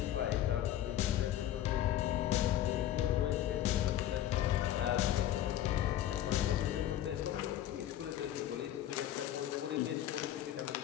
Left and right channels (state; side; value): quieter; right; 12.2 dB